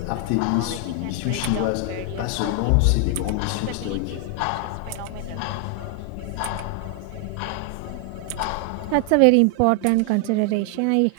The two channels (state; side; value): different; both; correlation 0.00